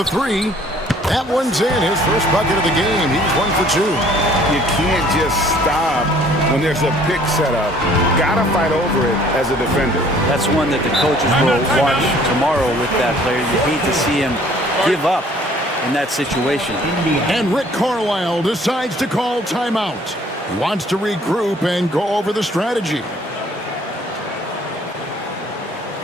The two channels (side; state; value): both; normal; correlation 0.57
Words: 3. That one's in. His first bucket of the game. He's 1 for 2. You can't just stop when there's a pick set up. Gotta fight over it as a defender. That's one that the coaches will watch tomorrow with that player. You hate to see him give up in that situation. And Rick Carlisle decides to call timeout. He wants to regroup and go over the strategy.